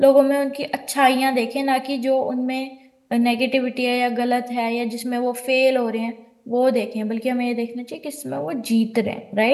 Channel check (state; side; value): identical; both; correlation 1.00